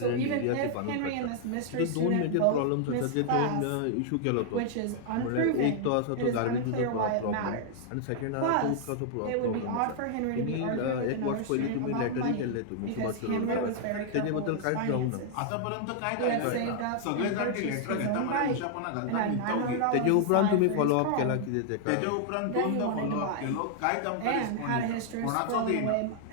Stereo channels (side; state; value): both; different; correlation -0.01